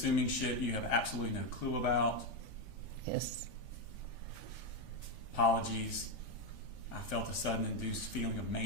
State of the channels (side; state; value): right; late; 3.5 ms